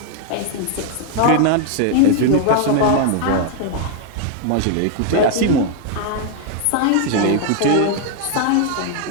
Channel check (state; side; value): different; both; correlation 0.00